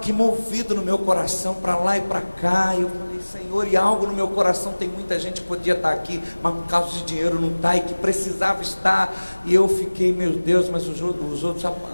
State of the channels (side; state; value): both; inverted; correlation -1.00